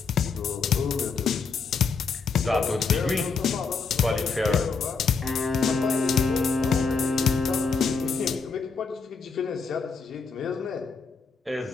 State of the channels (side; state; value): right; quieter; 5.0 dB